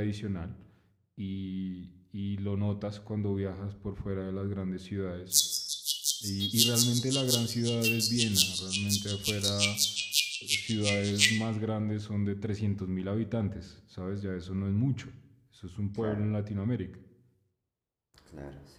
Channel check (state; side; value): identical; both; correlation 1.00